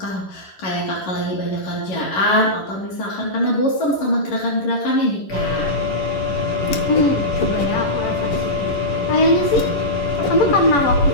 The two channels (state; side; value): late; right; 11 ms